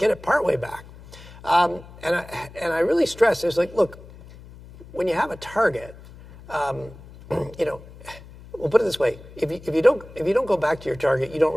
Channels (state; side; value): noise; left; hum, 19 dB below the sound